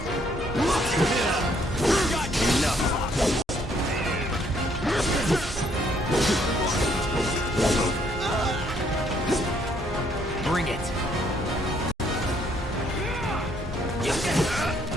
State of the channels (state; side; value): normal; both; correlation 0.68